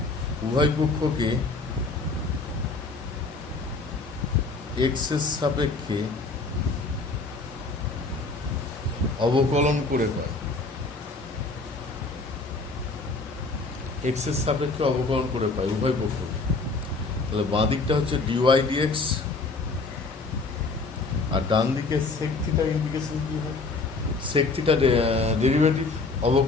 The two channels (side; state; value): right; quieter; 3.7 dB